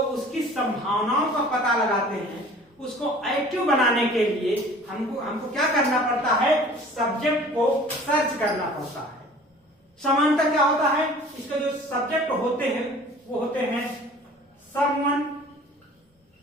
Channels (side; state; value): both; normal; correlation 0.47